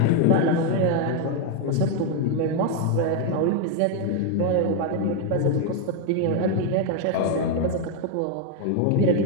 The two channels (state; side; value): different; both; correlation 0.01